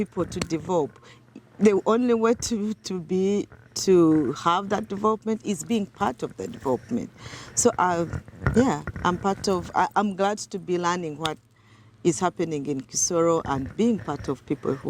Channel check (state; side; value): identical; both; correlation 1.00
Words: to develop. The only way to have that development is being part of the development. So yeah, I'm part of. I'm glad to be learning what is happening in Kisoro and being part of people